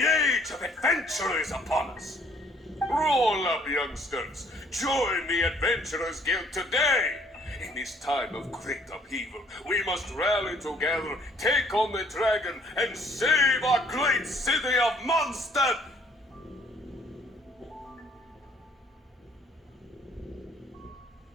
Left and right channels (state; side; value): normal; both; correlation 0.62